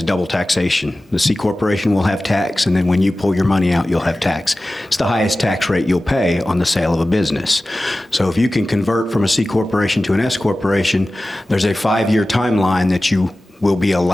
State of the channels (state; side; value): normal; both; correlation 0.96